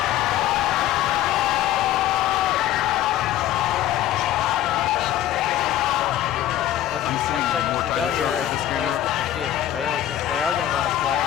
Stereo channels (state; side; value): quieter; right; 12.4 dB